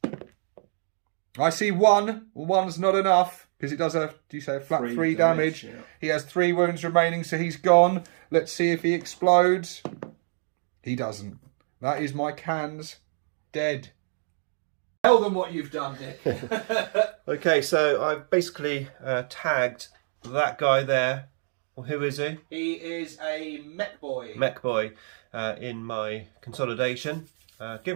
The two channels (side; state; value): left; silent; digital silence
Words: I see 1. 1's not enough because it does a, do you say, a flat 3 damage. Yeah. He has 3 wounds remaining, so he's gone. Let's see if he explodes. He doesn't. That is my cans dead. Tell them what you've done, Nick. Okay, so I've basically tagged that guy there. Well, who is he? He is a mech boy. Mech boy in my consolidation.